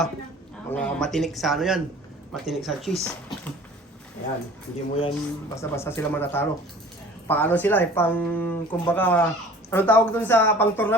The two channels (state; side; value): normal; both; correlation 0.46